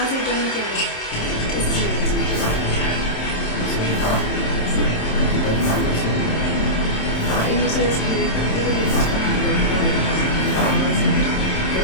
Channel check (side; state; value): right; late; 27 ms